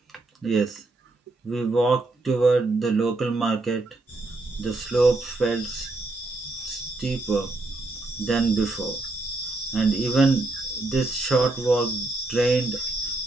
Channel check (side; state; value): left; quieter; 3.1 dB